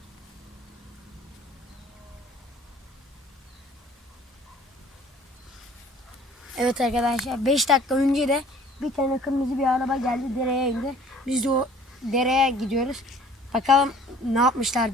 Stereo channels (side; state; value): both; normal; correlation 0.53